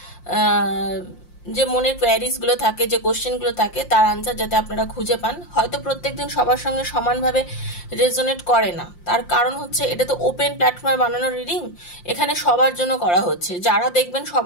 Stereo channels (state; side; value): late; right; 5.7 ms